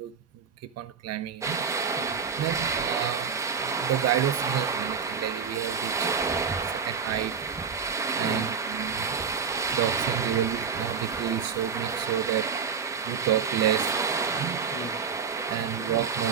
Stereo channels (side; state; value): left; quieter; 6.3 dB